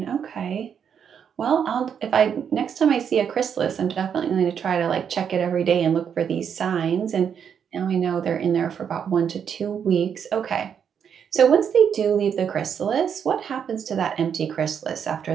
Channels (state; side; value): quieter; left; 7.7 dB